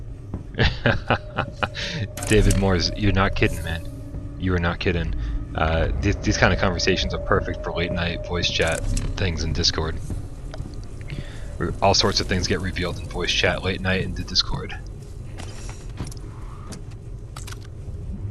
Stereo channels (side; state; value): both; identical; correlation 1.00